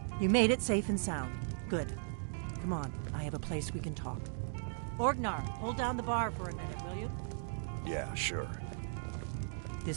You made it safe and sound. Good. Come on, I have a place we can talk. Orgnar, hold down the bar for a minute, will you? Yeah, sure.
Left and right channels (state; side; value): silent; left; digital silence